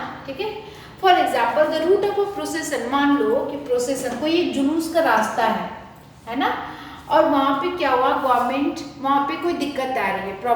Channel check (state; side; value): identical; both; correlation 1.00